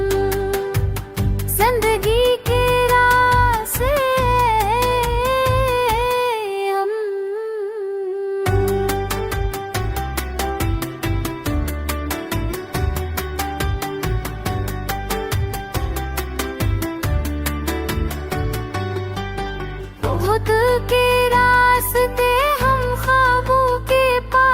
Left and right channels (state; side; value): identical; both; correlation 1.00